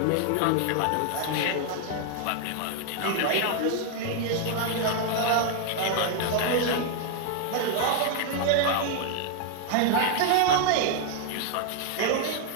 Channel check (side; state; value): both; different; correlation 0.00